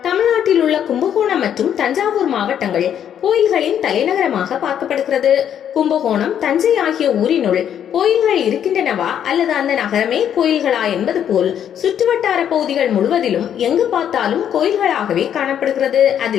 தமிழ்நாட்டில் உள்ள கும்பகோணம் மற்றும் தஞ்சாவூர் மாவட்டங்கள் கோயில்களின் தலைநகரமாக பார்க்கப்படுகிறது. கும்பகோணம், தஞ்சை ஆகிய ஊரினுள் கோயில்கள் இருக்கின்றனவா அல்லது அந்த நகரமே கோயில்களா என்பது போல் சுற்றுவட்டார பகுதிகள் முழுவதிலும் எங்கு பார்த்தாலும் கோயில்களாகவே காணப்படுகிறது.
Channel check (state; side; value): quieter; right; 9.4 dB